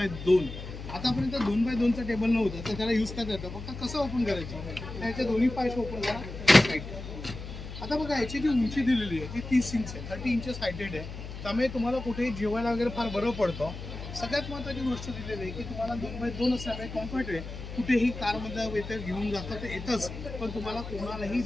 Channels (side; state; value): left; noise; hum, 10 dB below the sound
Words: आतापर्यंत 2x2चा टेबल नव्हतं, तर त्याला यूज करता येतं. फक्त कसं ओपन करायचं, त्याचे दोन्ही पाय ओपन करा. आता बघा याची जी उंची दिलेली आहे ती 30 इंच आहे, 30 इंचेस हायटेड आहे, त्यामुळे तुम्हाला कुठेही जेवायला वगैरे फार बरं पडतं. सगळ्यात महत्त्वाची गोष्ट दिलेली आहे की तुम्हाला 2x2 असल्यामुळे कम्फर्ट आहे. कुठेही कारमध्ये येतं घेऊन जातं तर येतच, पण तुम्हाला कोणालाही